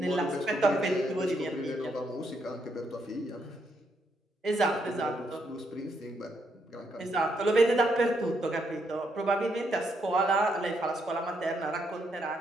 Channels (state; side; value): normal; both; correlation 0.77